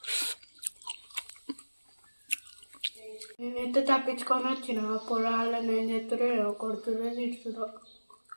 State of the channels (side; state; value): both; inverted; correlation -1.00